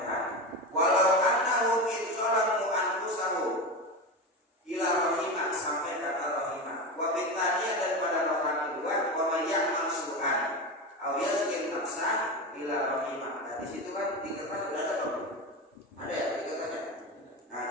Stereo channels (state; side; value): normal; both; correlation 0.21